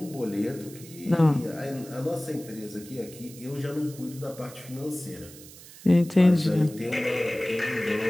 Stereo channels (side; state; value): right; noise; hiss, 18 dB below the sound